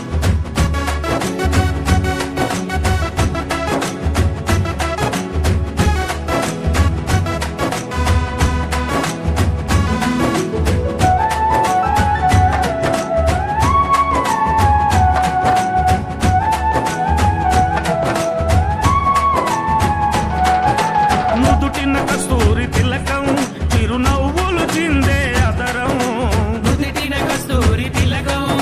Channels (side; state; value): both; identical; correlation 1.00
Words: నుదుటిన కస్తూరి తిలకం చిరునవ్వులు చిందే అదరం నుదిటిన కస్తూరి తిలకం